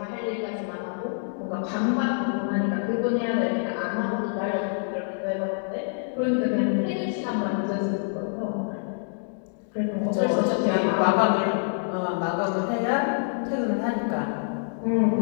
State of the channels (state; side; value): silent; right; digital silence